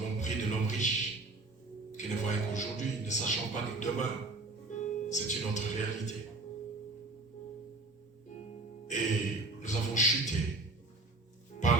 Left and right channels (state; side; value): quieter; left; 3.1 dB